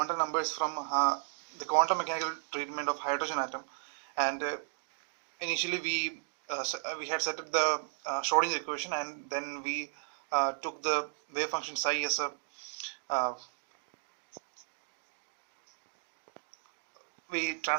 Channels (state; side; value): silent; left; digital silence